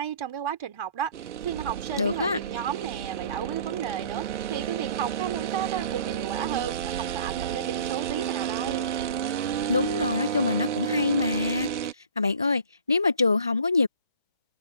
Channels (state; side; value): inverted; both; correlation -0.49